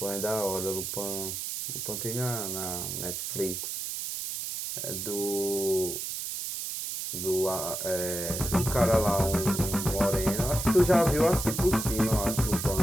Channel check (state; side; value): noise; right; hiss, 4 dB below the sound